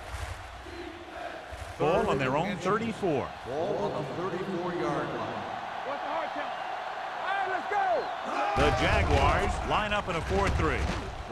Ball on their own 34. Ball on the 34-yard line. What's the hard count? All right, let's go. The Jaguars line up in a 4-3.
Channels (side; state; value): both; identical; correlation 1.00